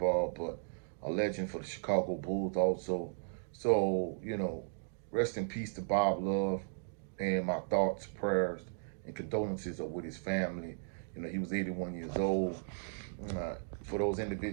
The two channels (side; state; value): left; silent; digital silence